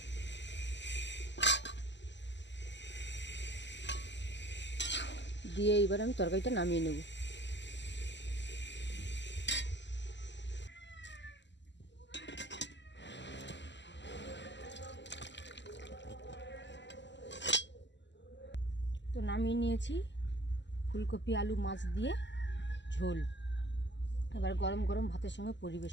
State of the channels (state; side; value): late; right; 0.52 ms